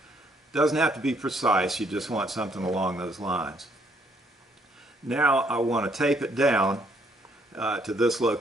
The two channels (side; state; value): both; normal; correlation 0.68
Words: Doesn't have to be precise, you just want something along those lines. Now I want to tape it down to this